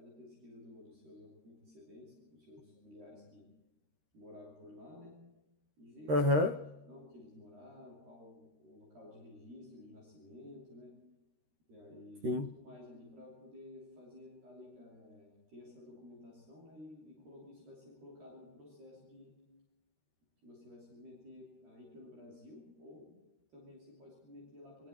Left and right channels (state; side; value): late; left; 13 ms